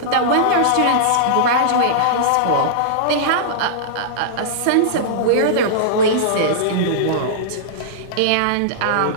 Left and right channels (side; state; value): both; different; correlation -0.02